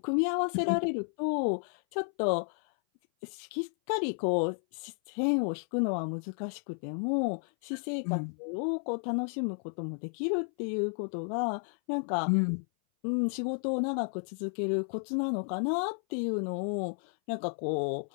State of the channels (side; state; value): right; silent; 56 dB below the other